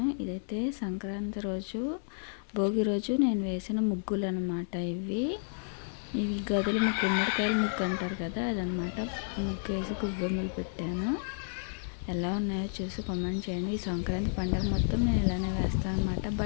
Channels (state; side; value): silent; right; 57 dB below the other